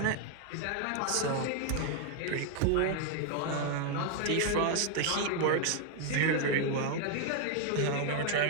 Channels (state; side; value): different; both; correlation 0.00